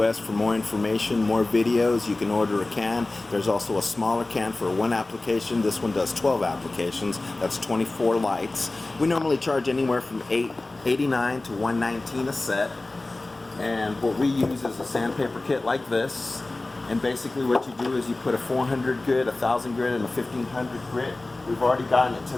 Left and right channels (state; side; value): quieter; right; 3.0 dB